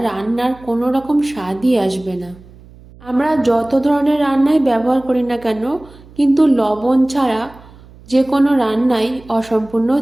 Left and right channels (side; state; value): right; noise; hum, 23 dB below the sound